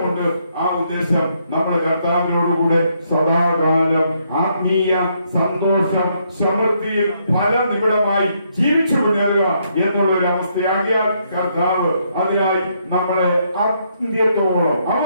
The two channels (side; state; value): both; inverted; correlation -0.74